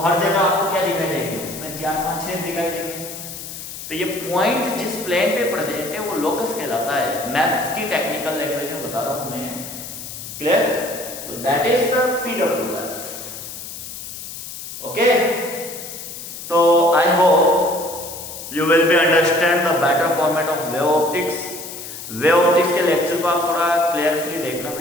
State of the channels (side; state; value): left; noise; hiss, 10 dB below the sound